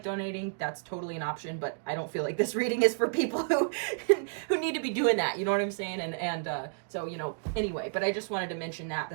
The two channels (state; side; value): silent; left; digital silence